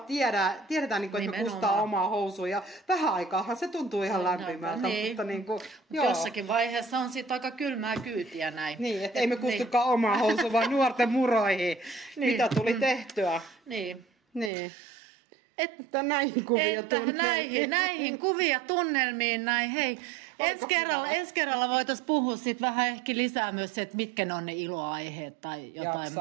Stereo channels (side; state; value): left; drops out; at 14.5 s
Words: että me kustaa omaa housua ja vähän aikaahan se tuntuu ihan lämpimältä. Niin. Mutta jossakin vaiheessa on siitä aika kylmää kyytiä näin. Niin, että ei me kustukaan omaa housua, vaan nuorten muroihin, mitä tuli tehtyä. Niin. Että näihin kuvia tunnelmiin. Näihin kuvia tunnelmiin, näin. Hei, ensi kerralla voitaisiin puhua sit vähän ehkä lisää myös se, että mitkä ne on ne iloaiheet tai jotain